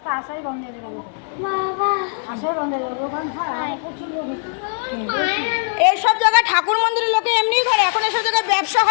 আসাই বন্ধ করে দেবো বাবা, আসাই বন্ধ করে দেবো। এইসব জায়গায় ঠাকুর মন্দিরের লোকে এমনিই করে, এখন এসব জায়গায় ব্যবসা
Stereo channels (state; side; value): silent; right; digital silence